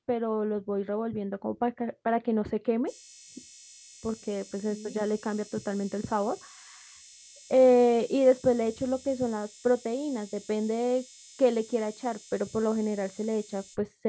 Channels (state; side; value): identical; both; correlation 1.00